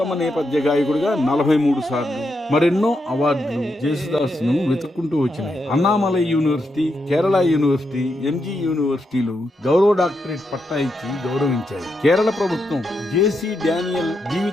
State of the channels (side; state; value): both; normal; correlation 0.83